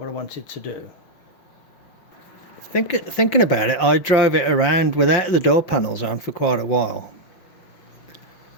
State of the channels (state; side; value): late; right; 5.7 ms